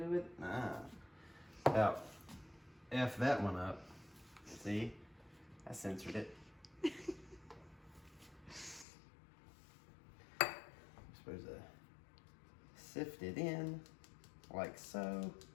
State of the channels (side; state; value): right; drops out; at 8.8 s